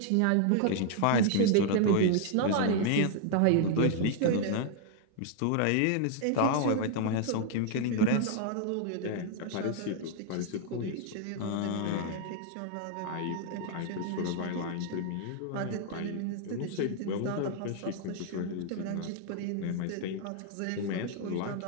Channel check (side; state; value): both; different; correlation 0.00